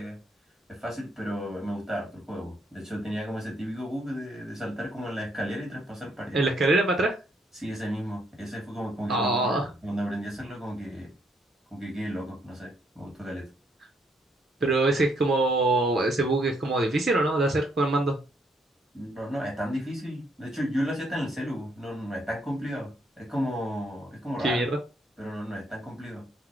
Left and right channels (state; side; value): normal; both; correlation 0.72